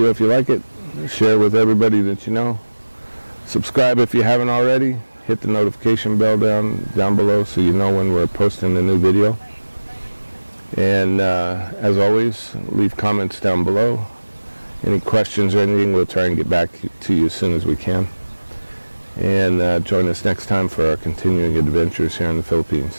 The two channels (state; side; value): inverted; both; correlation -1.00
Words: if you like it. Share with everybody that you know. Subscribe if you haven't already. Hit the notification bell down below so you know when we're posting a new video. And as always, leave comments down below. Any questions or anything, we'll try and get back to you as soon as we can. And join us next time for our continuing adventures here in the